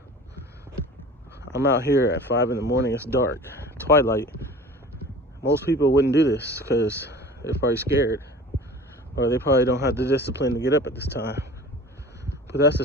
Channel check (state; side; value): normal; both; correlation 0.41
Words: I'm out here at 5 in the morning. It's dark, twilight. Most people wouldn't do this because they're probably scared, or they probably don't have the discipline to get up at this time. But that's